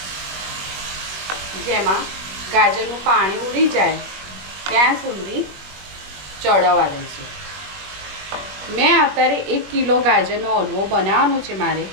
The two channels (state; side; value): late; left; 21 ms